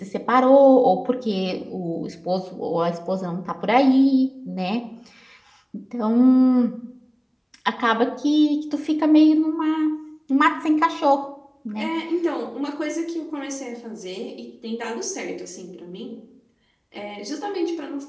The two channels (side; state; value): both; identical; correlation 1.00